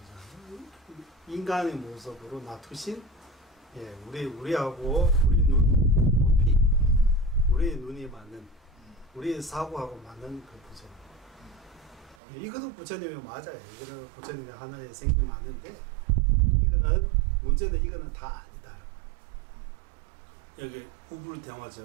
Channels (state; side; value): drops out; left; at 12.2 s